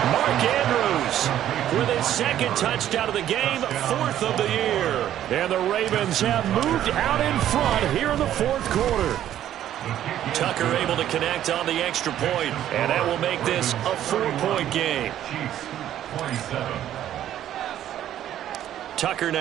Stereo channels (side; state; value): left; quieter; 11.6 dB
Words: Mark Andrews with his second touchdown of the game, fourth of the year. And the Ravens have moved out in front here in the fourth quarter. Tucker able to connect on the extra point, and that will make this a 4-point game. Tucker